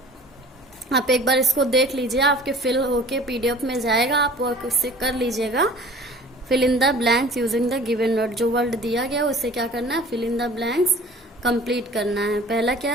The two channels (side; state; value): both; normal; correlation 0.46